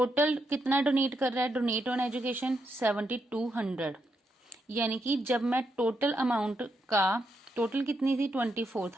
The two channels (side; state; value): both; normal; correlation 0.81